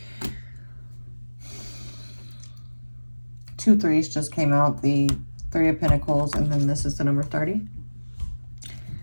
two threes just came out, the Three of Pentacles, and then this is the number 30.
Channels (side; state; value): both; inverted; correlation -1.00